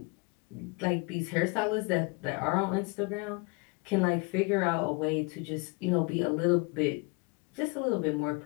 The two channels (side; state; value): right; quieter; 30.8 dB